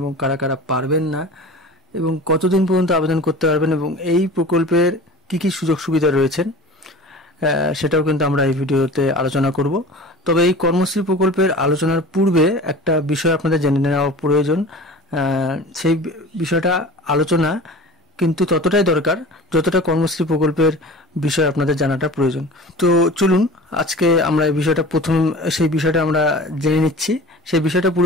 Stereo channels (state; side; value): normal; both; correlation 0.38